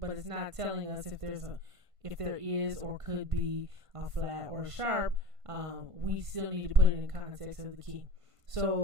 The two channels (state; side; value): late; left; 1.5 ms